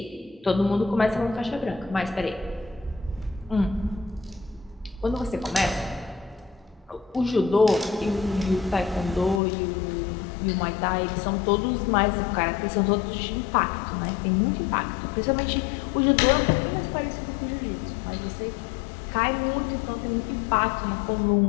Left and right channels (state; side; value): drops out; right; at 9.4 s